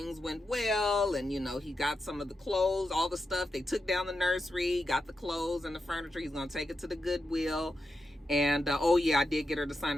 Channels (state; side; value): normal; both; correlation 0.87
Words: went well, and, you know, he got some of the clothes, all the stuff. They took down the nursery, got the clothes and the furniture. He's going to take it to the Goodwill. And, oh yeah, I did get her to sign